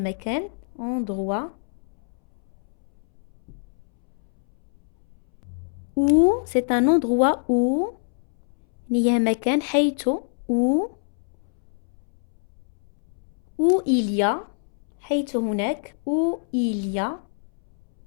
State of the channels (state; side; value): silent; right; 62 dB below the other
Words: endroit, où, c'est un endroit où, هي مكان حيث, où il y a, حيث هناك, où il y a,